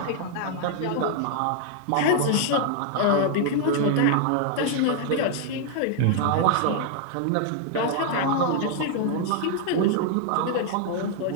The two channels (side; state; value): both; different; correlation 0.00